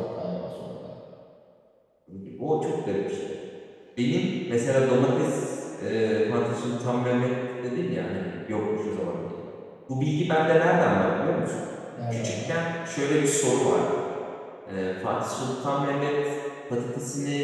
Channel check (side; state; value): both; identical; correlation 1.00